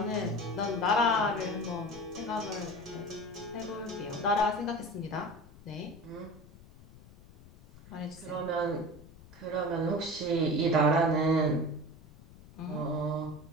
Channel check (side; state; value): left; noise; rumble, 21 dB below the sound